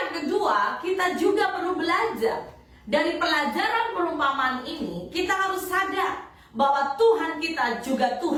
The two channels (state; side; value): identical; both; correlation 1.00